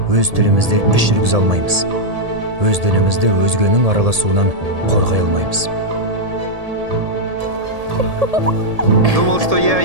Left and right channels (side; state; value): left; late; 1.7 ms